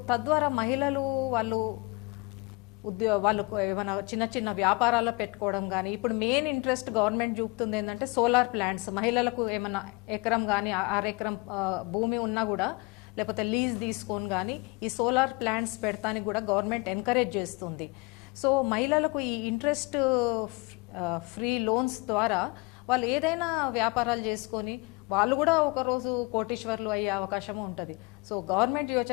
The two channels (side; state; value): right; quieter; 26.4 dB